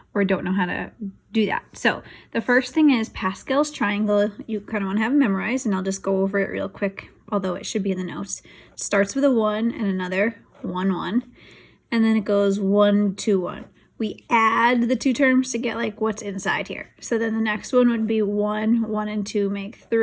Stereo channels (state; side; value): identical; both; correlation 1.00